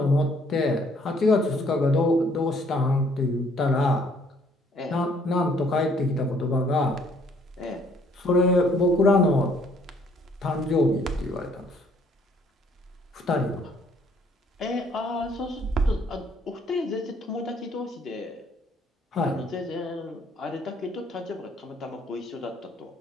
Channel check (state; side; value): normal; both; correlation 0.63